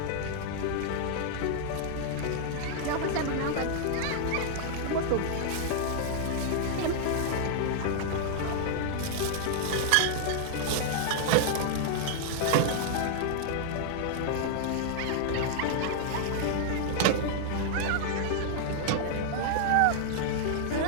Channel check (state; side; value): different; both; correlation -0.01